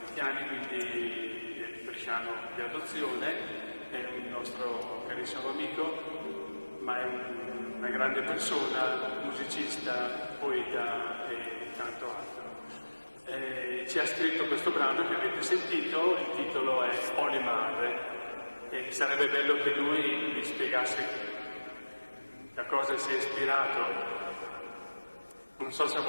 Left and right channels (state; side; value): inverted; both; correlation -1.00